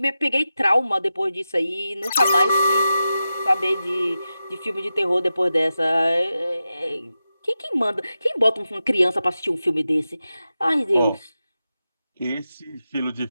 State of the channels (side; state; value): both; inverted; correlation -0.91